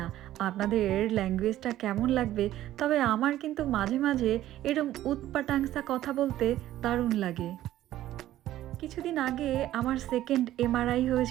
আপনাদের ল্যাঙ্গুয়েজটা কেমন লাগবে, তবে আমার কিন্তু মাঝে মাঝে এরম উৎপাটাংসা কথা বলতে দারুণ লাগে। কিছুদিন আগে আমার সেকেন্ড এমআরআই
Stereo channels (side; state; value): left; quieter; 13.7 dB